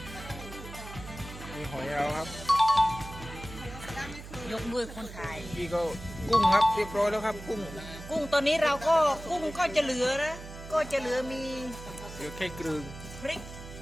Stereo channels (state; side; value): noise; right; hum, 13 dB below the sound